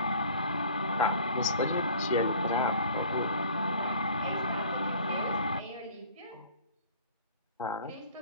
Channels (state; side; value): inverted; both; correlation -0.48